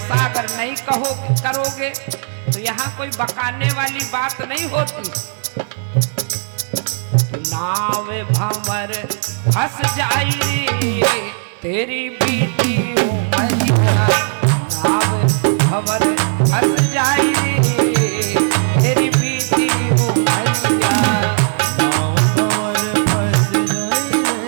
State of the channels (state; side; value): silent; left; digital silence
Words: अगर नहीं करोगे तो यहाँ कोई बकाने वाली बात नहीं होती। नाव भंवर फंस जाई तेरी बीती उमरिया, नाव भंवर फंस जाई तेरी बीती उमरिया। नाव भंवर फंस जाई